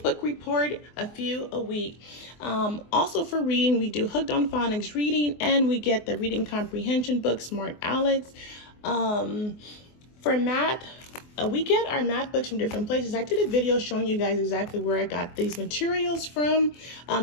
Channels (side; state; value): right; late; 24 ms